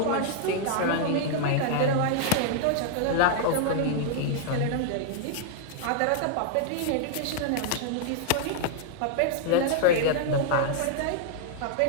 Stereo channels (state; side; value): different; both; correlation -0.01